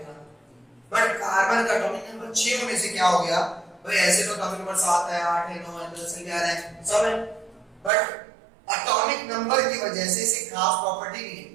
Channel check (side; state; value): left; drops out; at 7.9 s